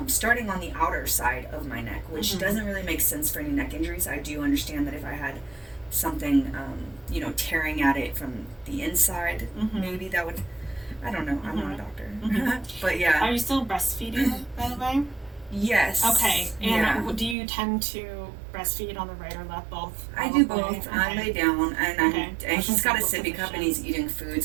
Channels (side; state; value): left; drops out; at 17.4 s